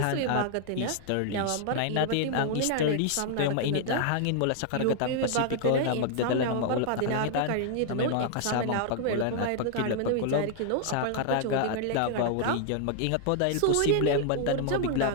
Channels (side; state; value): both; different; correlation 0.00